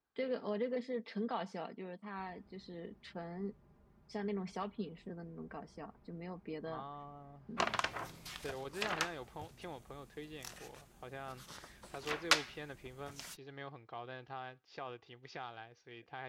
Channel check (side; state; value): both; identical; correlation 1.00